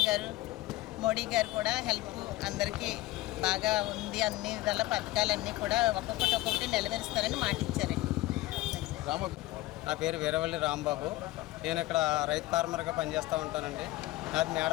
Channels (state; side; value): quieter; right; 18.0 dB